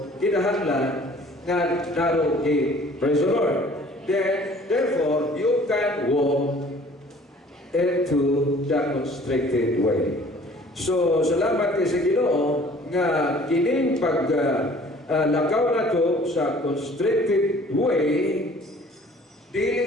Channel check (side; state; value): both; normal; correlation 0.52